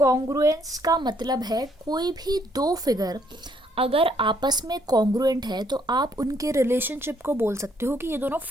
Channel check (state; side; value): normal; both; correlation 0.69